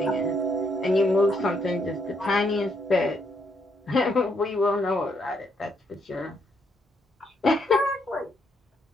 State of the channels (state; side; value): normal; both; correlation 0.74